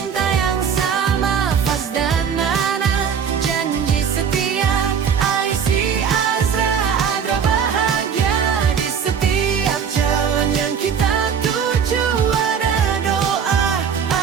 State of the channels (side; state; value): left; quieter; 7.2 dB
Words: yang sama, Faz dan Nana, janji setia, Aishi, Azra, Adra bahagia di setiap jalan yang kita tuju. Ada doa,